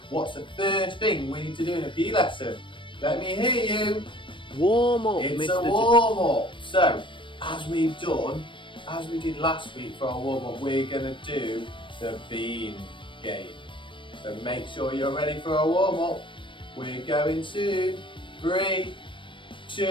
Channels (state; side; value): late; right; 0.24 ms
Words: what's the first thing we need to do in a PE lesson? Let me hear you. Warm up, It's Mr. a warm up. So, as we did last week for our warm up, we're going to do the beam game. So make sure you're ready for our warm up. We're going to 3,